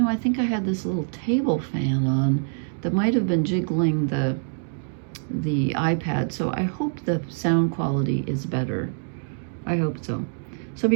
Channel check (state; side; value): silent; left; digital silence